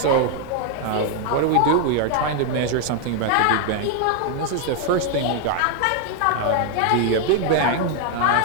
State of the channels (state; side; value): different; both; correlation 0.00